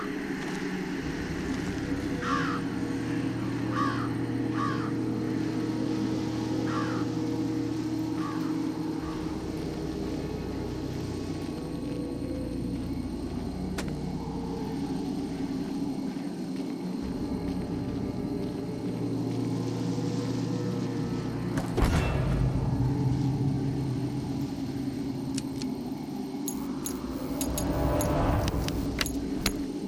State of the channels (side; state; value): both; identical; correlation 1.00